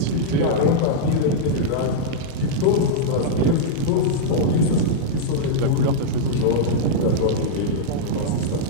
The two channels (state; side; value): different; both; correlation -0.03